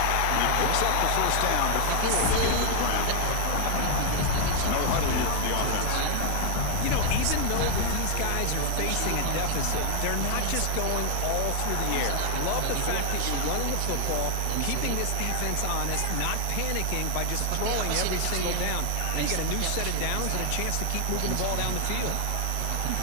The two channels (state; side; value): different; both; correlation 0.00